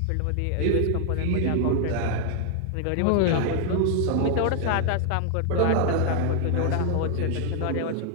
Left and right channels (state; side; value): different; both; correlation 0.00